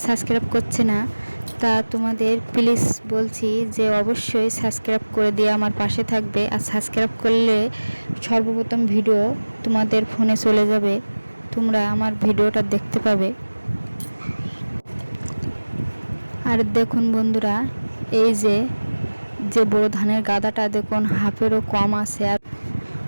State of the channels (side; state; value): both; inverted; correlation -1.00